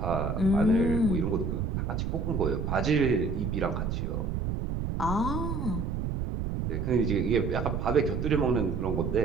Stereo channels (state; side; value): noise; right; rumble, 2 dB below the sound